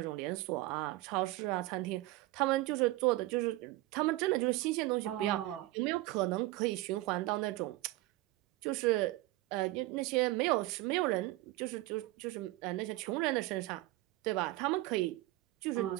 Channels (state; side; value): quieter; left; 18.7 dB